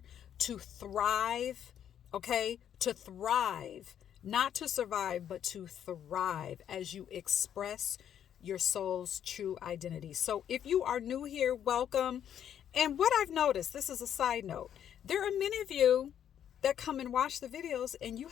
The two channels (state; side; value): quieter; right; 9.6 dB